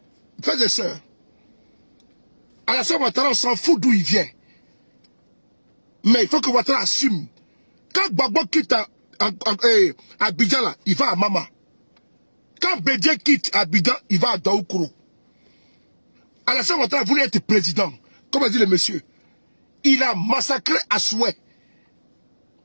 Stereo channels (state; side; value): inverted; both; correlation -1.00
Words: Frères et sœurs, Alassane Ouattara, on s'en fout d'où il vient. Mais il faut que Ouattara assume. Quand Gbagbo quitte Abidjan, là, il va à Mama. Quand Bédié quitte Abidjan, il va à Daoukoro. Alassane Ouattara voulait être président. Comme a dit le monsieur. Il a massacré à souhait.